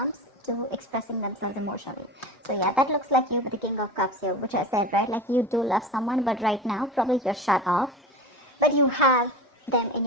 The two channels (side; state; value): both; normal; correlation 0.30